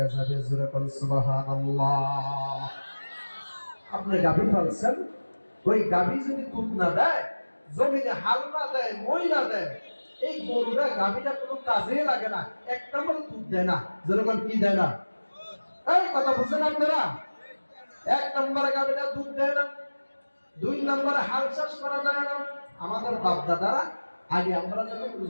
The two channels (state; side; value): inverted; both; correlation -1.00